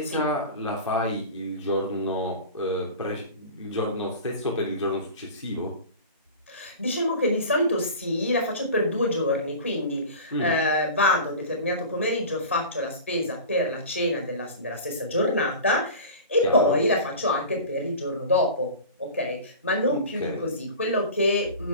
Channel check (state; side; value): inverted; both; correlation -0.36